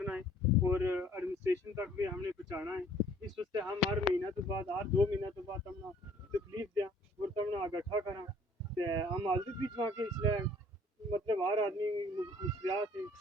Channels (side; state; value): both; normal; correlation 0.56